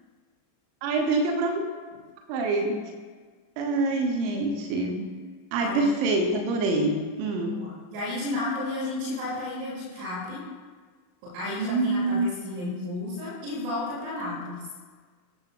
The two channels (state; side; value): late; left; 38 ms